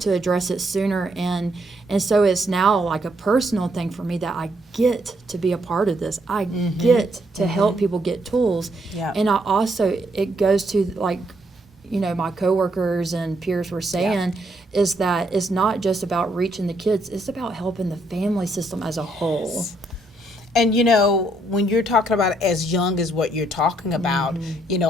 address it sooner. And so it's now like a personal thing for me that I get to be a part of this. I get to help people get tools. And I also, it goes to like, you know, my coworkers and peers were saying, is that it's not just about reaching the kids, it's about helping the family system as a whole. And you know, when you're talking about as young as what you're talking about, you know,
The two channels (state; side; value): normal; both; correlation 0.73